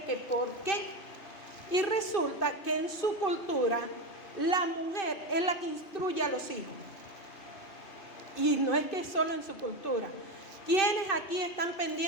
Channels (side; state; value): right; late; 2.8 ms